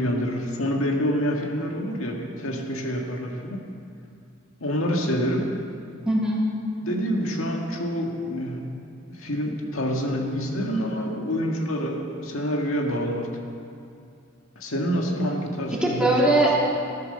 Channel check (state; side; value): normal; both; correlation 0.50